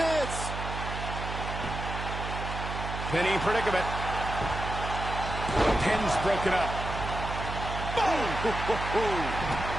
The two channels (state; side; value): noise; right; hum, 6 dB below the sound